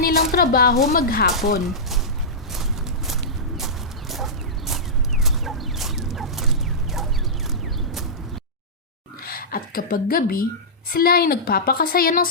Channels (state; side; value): normal; both; correlation -0.15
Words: trabaho maghapon. At kapag gabi, sila ay nagpapakasaya ng